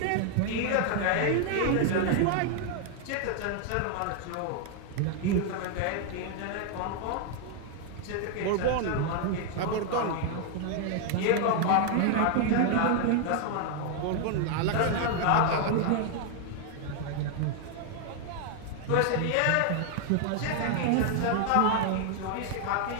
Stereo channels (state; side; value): different; both; correlation 0.00